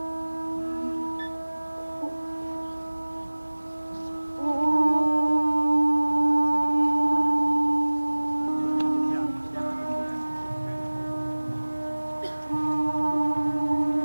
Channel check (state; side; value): inverted; both; correlation -1.00